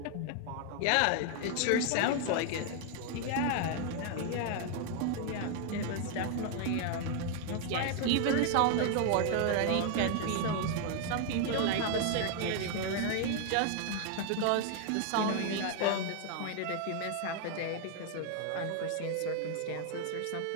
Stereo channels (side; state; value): both; different; correlation 0.00